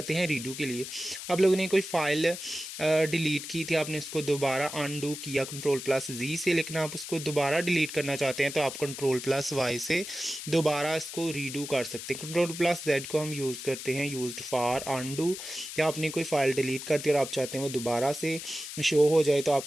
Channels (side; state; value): left; noise; hiss, 9 dB below the sound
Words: हैं रीडू के लिए। आप लोगों ने कोई फ़ाइल डिलीट की थी, आपने उसको दोबारा अनडू किया Ctrl+Z से, लेकिन आप उसको दोबारा डिलीट करना चाहते हैं तो आप Ctrl+Y से दोबारा इसको रीडू कर सकते हैं। Ctrl+Z को हम यूज़ करते हैं यूज्ड फॉर अनडू। या आपने कोई फ़ाइल डिलीट कर दी और आप चाहते हैं वो दोबारा से शो हो जाए तो आप